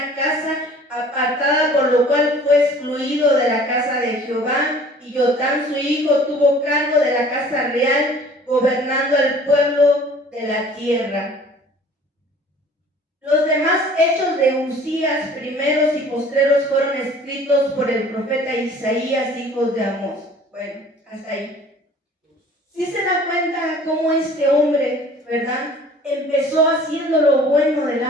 casa apartada, por lo cual fue excluido de la casa de Jehová. Y Jotam su hijo tuvo cargo de la casa real, gobernando al pueblo de la tierra. Los demás hechos de Usías, primeros y postreros, fueron escritos por el profeta Isaías, hijo de Amós. Bueno, hasta ahí. ¿Sí se da cuenta cómo este hombre, verdad, empezó haciendo lo bueno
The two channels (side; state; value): both; normal; correlation 0.50